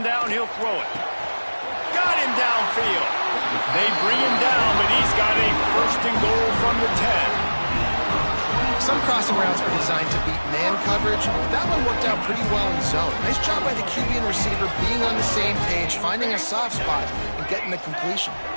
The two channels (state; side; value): inverted; both; correlation -1.00